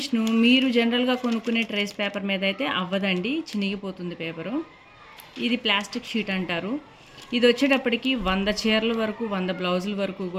మీరు జనరల్గా కొనుక్కునే ట్రేస్ పేపర్ మీద అయితే అవ్వదండి, చినిగిపోతుంది పేపరు. ఇది ప్లాస్టిక్ షీట్ అంటారు. ఇది వచ్చేటప్పటికి 100 చీరల వరకు, 100 బ్లౌజుల వరకు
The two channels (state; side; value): identical; both; correlation 1.00